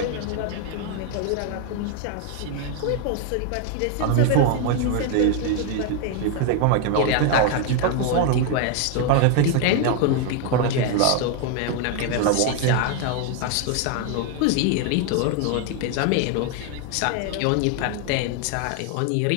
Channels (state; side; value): different; both; correlation 0.00